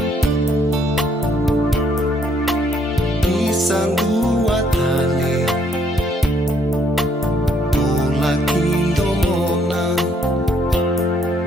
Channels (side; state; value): both; normal; correlation 0.68